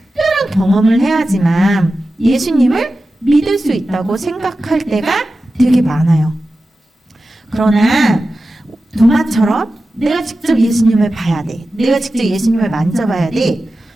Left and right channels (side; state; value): both; normal; correlation 0.93